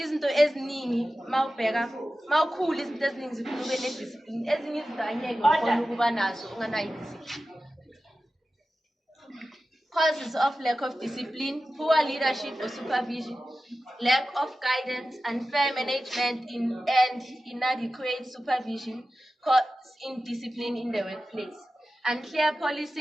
eziningi mawukhula izinto eziningi zifuna ube nediscipline. Ezinye izinto angeke ukhona ukuba nazo unganayo idiscipline. Causes of lack of discipline: poor leadership or supervision, lack of guidance, unfair management and inadequate supervision cause indiscipline in the workplace, unclear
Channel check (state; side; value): normal; both; correlation 0.94